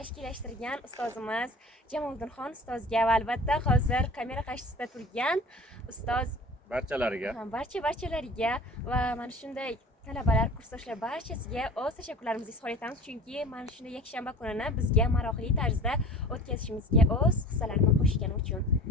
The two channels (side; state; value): both; normal; correlation 0.41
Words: ustozimiz Jamoliddinxon ustozga va albatta hozir kamera qarshisida turgan ustoz Barchalariga. barchalariga va mana shunday talabalar, kursdoshlar barchasiga o'z tashakkurlarimizni izhor etamiz, chunki mana shunday yakshanba kunini bizga maroqli tarzda o'tkazishimizga o'z hissalarini qo'shgani uchun.